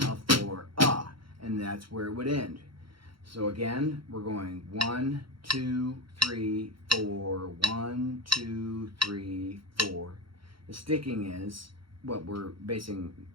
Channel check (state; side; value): late; left; 0.73 ms